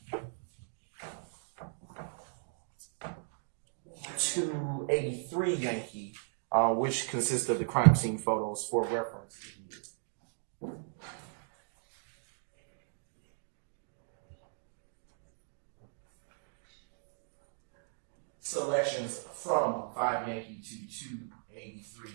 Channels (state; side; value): silent; left; digital silence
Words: 283 Yankee, which consists of the crime scene photos for reference. Selections from 5 Yankee to 283